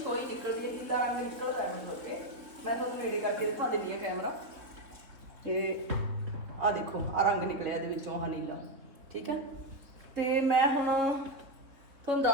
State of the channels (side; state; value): left; late; 3.7 ms